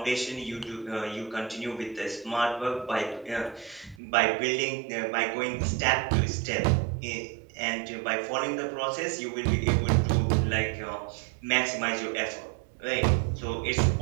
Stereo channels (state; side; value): drops out; left; at 4.0 s